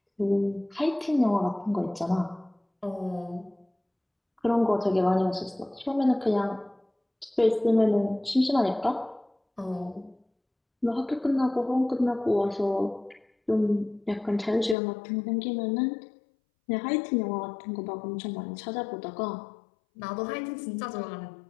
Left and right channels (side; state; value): right; drops out; at 14.8 s